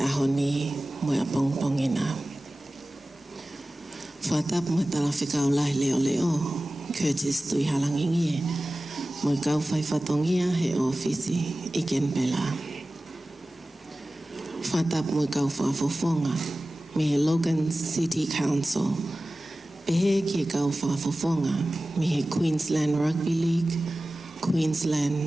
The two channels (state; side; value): normal; both; correlation 0.97